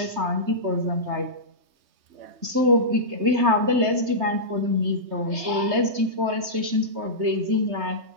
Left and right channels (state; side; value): late; left; 3.2 ms